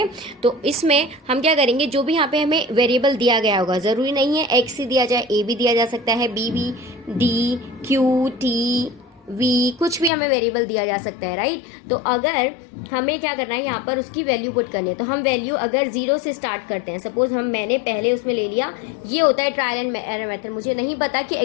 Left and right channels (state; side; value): drops out; right; at 10.1 s